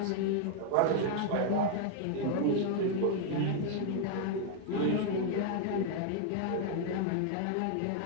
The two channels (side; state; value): both; different; correlation 0.00